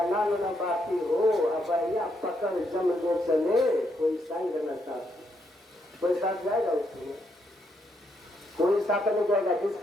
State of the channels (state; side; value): normal; both; correlation 0.77